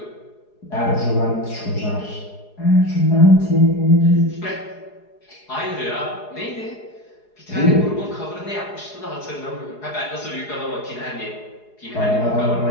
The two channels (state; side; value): late; right; 4.8 ms